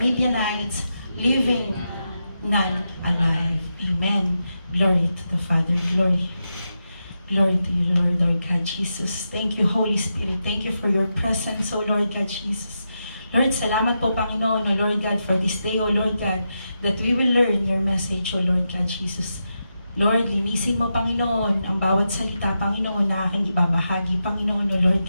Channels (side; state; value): both; inverted; correlation -0.87